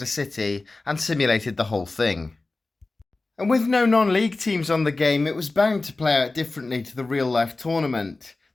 City and simulated the whole thing. And with no non-league teams on the game, it was bound to play out differently to the real-life tournament.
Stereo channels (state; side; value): quieter; right; 3.3 dB